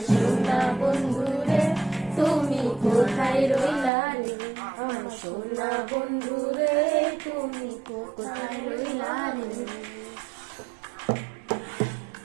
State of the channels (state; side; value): drops out; left; at 3.9 s